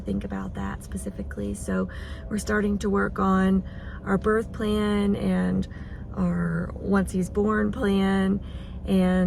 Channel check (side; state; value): both; identical; correlation 1.00